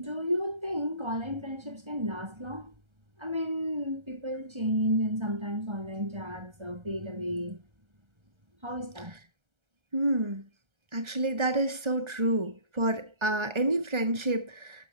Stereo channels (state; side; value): late; left; 1.3 ms